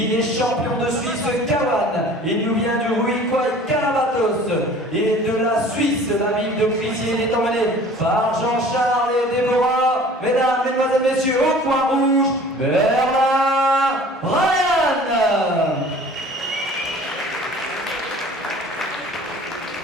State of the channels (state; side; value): normal; both; correlation 0.47